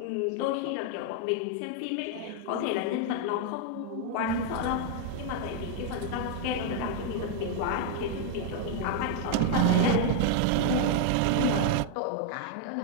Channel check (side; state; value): both; different; correlation 0.00